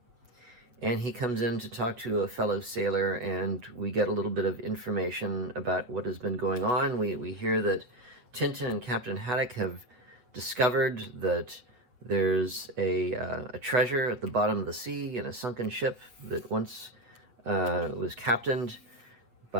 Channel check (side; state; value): left; late; 8.4 ms